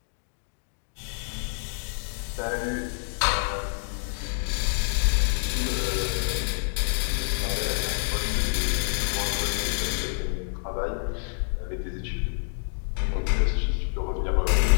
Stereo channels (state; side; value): silent; right; digital silence